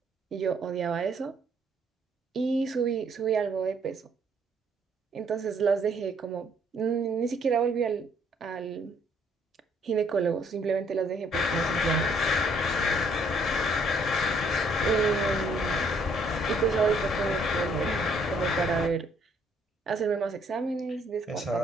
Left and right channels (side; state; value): both; normal; correlation 0.65